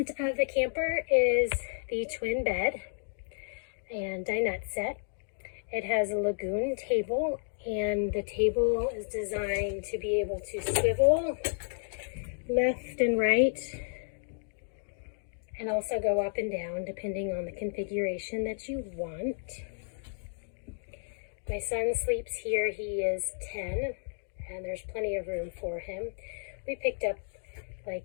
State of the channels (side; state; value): right; silent; digital silence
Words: of the camper is the twin bed and dinette set. It has a lagoon table, and the table is designed to be able to swivel left and right and also go up and down depending on the configuration that you want. My son sleeps here. He is 10 and there's plenty of room for him. We picked up